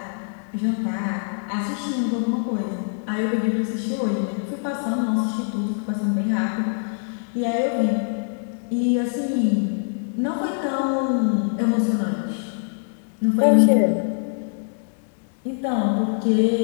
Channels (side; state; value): right; silent; digital silence